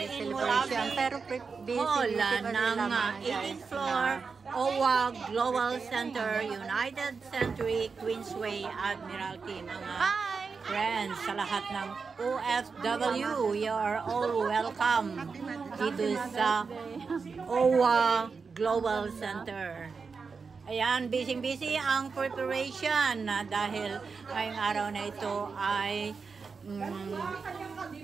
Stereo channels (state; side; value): quieter; left; 5.0 dB